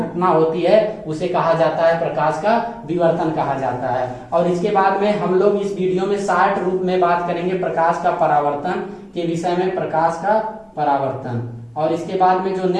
होती है उसे कहा जाता है प्रकाश का विवर्तन कहा जाता है। और इसके बाद में हम लोग इस वीडियो में शॉर्ट रूप में बात करेंगे प्रकाश का परावर्तन के विषय में, प्रकाश का परावर्तन। और इसके बाद में जो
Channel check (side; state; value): both; identical; correlation 1.00